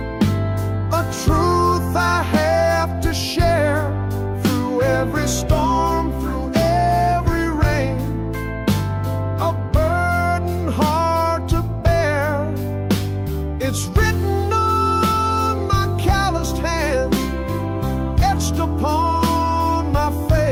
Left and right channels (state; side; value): identical; both; correlation 1.00